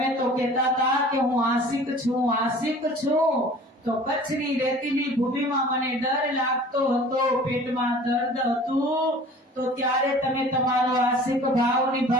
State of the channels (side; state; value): both; normal; correlation 0.45